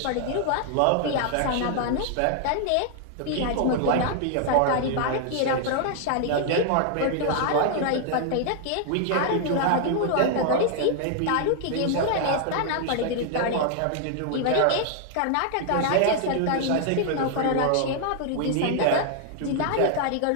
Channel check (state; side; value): different; both; correlation 0.00